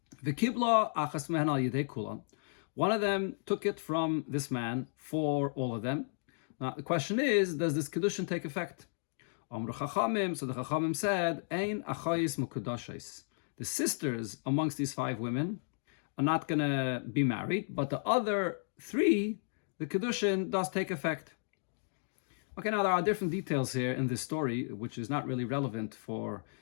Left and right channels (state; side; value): silent; right; digital silence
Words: One of them took it from this man for all of them. Now the question is, does this kedushin take effect? So the Chachamim said, Ein achayis mukadashis. The sisters amongst these 5 women are not going to be married, but the other 3, the kedushin does take effect. Okay, now there are different details here in this story, which is not really relevant for